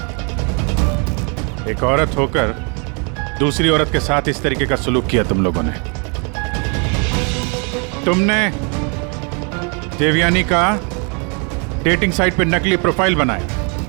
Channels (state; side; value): quieter; left; 35.5 dB